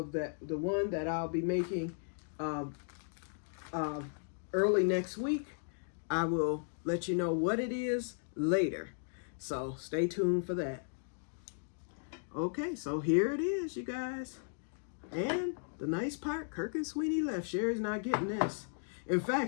the one that I'll be making early next week. I will let you know what it is later. So stay tuned for that. Okay, so here it is, you guys. And the nice part, Kirk and Sweeney left. Sherry's not getting this. In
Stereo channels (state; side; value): silent; right; digital silence